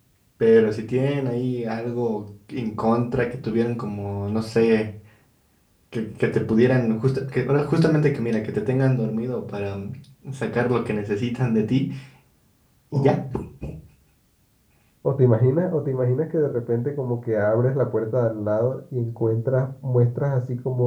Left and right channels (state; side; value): identical; both; correlation 1.00